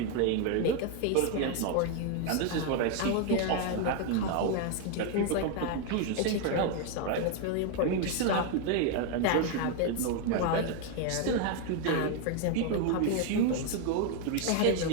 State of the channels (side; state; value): both; different; correlation 0.01